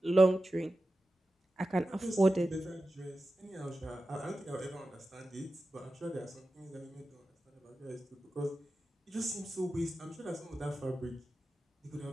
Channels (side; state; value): both; normal; correlation 0.93